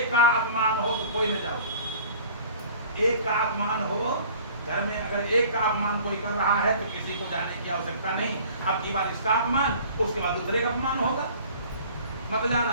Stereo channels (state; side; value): inverted; both; correlation -0.48